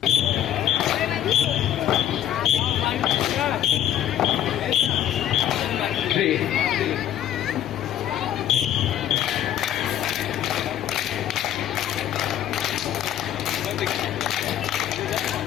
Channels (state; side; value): quieter; right; 11.4 dB